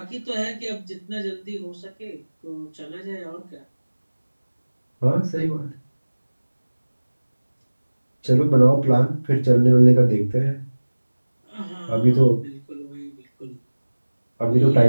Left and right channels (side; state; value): both; inverted; correlation -1.00